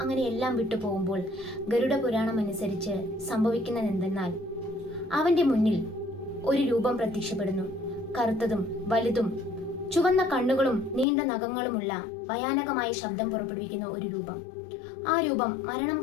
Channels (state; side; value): drops out; right; at 11.1 s